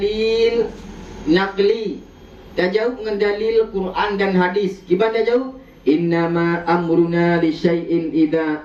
naqli, dah jawab dengan dalil Quran dan hadis. Gimana dah jawab? Innama amruna li syai'in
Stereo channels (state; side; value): identical; both; correlation 1.00